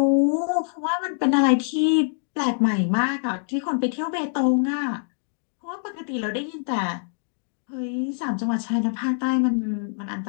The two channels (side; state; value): right; silent; digital silence